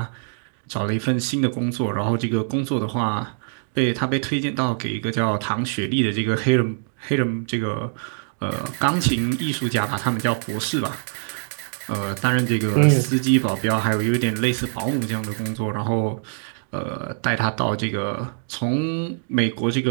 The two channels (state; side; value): silent; left; digital silence